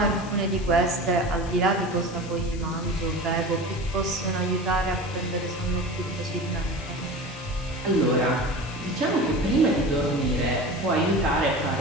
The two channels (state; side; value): noise; left; hiss, 19 dB below the sound